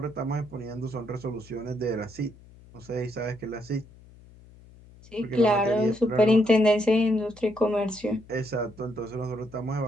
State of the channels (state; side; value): noise; left; hum, 23 dB below the sound